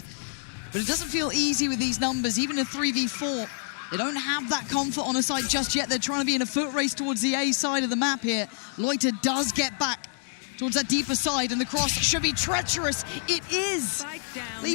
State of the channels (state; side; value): silent; right; digital silence